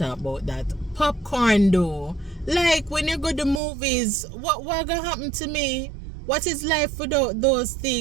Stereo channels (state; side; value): drops out; left; at 3.6 s